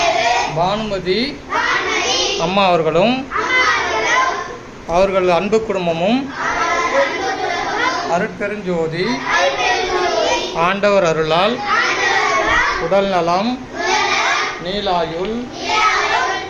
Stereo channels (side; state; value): both; identical; correlation 1.00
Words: பானுமதி அம்மா அவர்களும் அவர்கள் அன்பு குடும்பமும் அருட்பெருஞ்சோதி ஆண்டவர் அருளால் உடல் நலம் நீலாயுள்